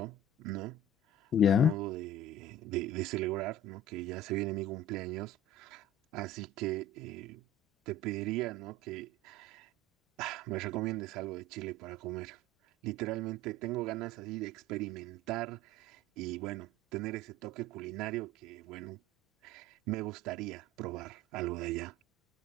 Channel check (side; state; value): both; normal; correlation 0.41